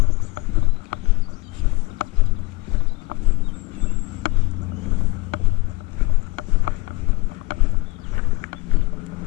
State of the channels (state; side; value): quieter; right; 21.5 dB